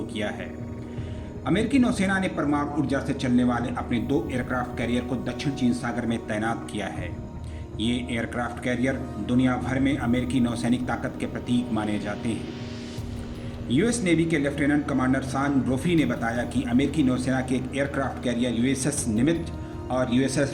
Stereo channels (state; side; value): identical; both; correlation 1.00